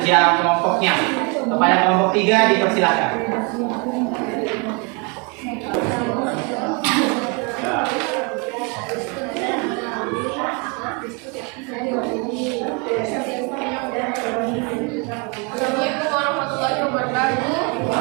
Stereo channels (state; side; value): quieter; left; 31.3 dB